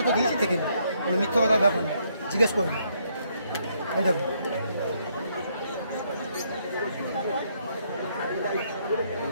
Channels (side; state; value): both; inverted; correlation -0.72